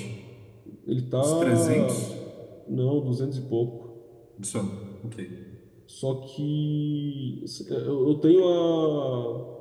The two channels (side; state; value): both; identical; correlation 1.00